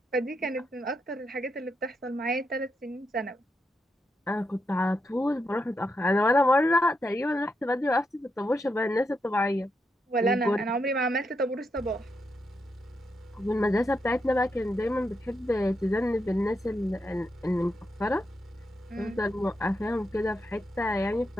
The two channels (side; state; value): both; normal; correlation 0.83